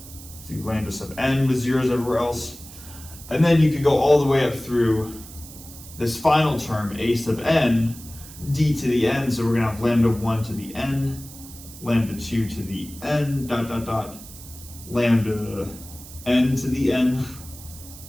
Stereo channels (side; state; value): right; noise; hiss, 17 dB below the sound